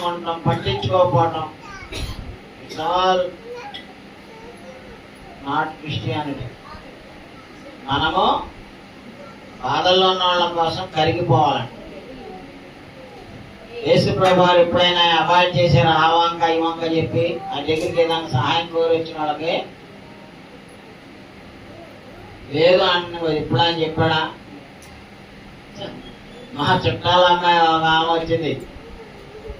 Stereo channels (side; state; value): both; identical; correlation 1.00